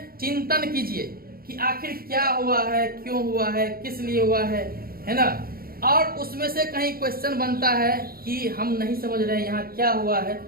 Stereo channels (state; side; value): late; left; 0.43 ms